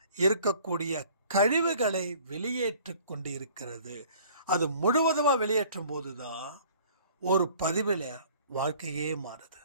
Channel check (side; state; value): both; inverted; correlation -0.52